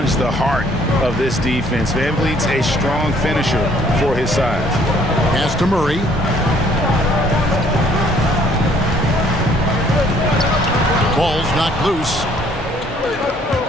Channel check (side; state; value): both; normal; correlation 0.61